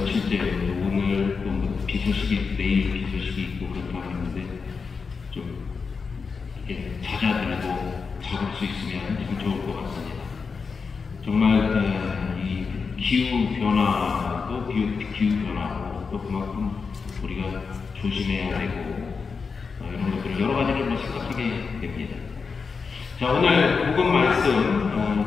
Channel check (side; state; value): right; quieter; 5.1 dB